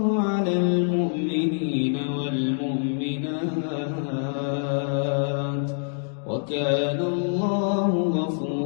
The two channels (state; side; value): silent; right; digital silence